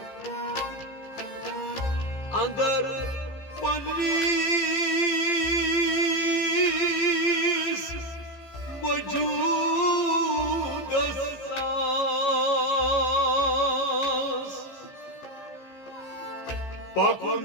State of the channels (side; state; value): right; late; 15 ms